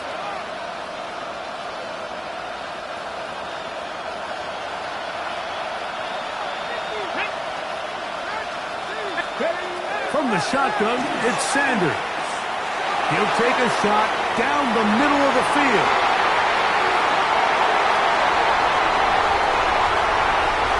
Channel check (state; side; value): identical; both; correlation 1.00